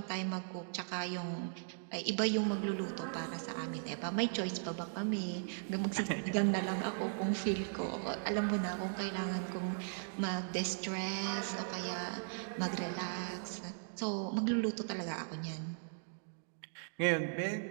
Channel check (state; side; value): silent; left; digital silence